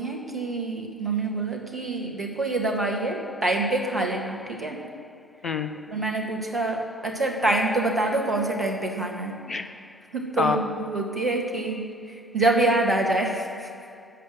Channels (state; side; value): normal; both; correlation 0.48